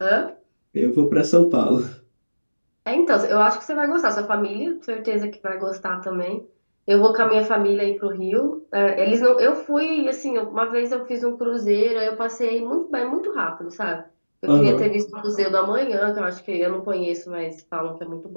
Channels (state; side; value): inverted; both; correlation -1.00